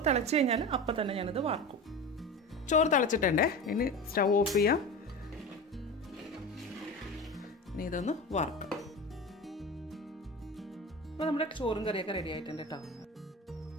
തിളച്ച് കഴിഞ്ഞാൽ അപ്പം തന്നെ ഞാനിത് വാർക്കും. ചോറ് തിളച്ചിട്ടുണ്ടേ. ഇനി സ്റ്റൗ ഓഫ് ചെയ്യാം. ഇനി ഇതൊന്ന് വാർക്കാം. അപ്പോൾ നമ്മുടെ ചോറും കറിയൊക്കെ റെഡി ആയിട്ടുണ്ട് കേട്ടോ.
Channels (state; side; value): normal; both; correlation 0.28